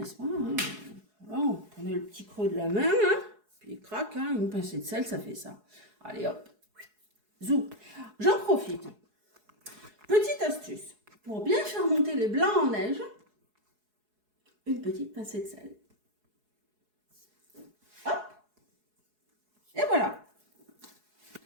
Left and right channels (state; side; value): late; left; 4.7 ms